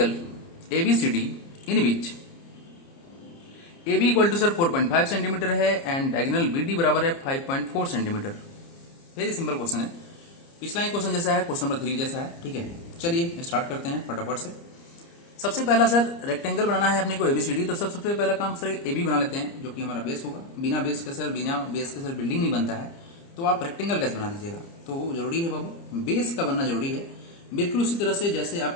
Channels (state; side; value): late; right; 30 ms